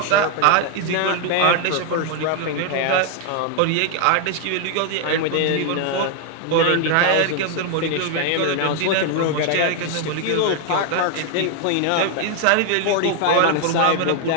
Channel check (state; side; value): different; both; correlation 0.00